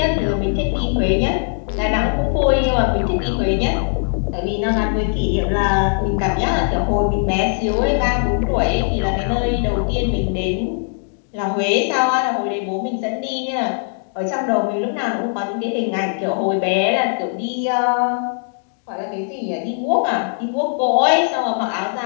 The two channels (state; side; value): silent; right; digital silence